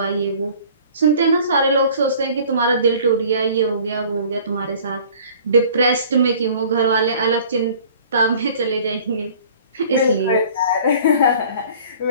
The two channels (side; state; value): both; inverted; correlation -0.49